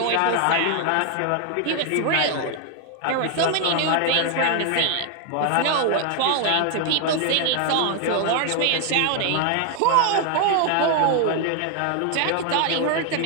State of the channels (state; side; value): different; both; correlation 0.01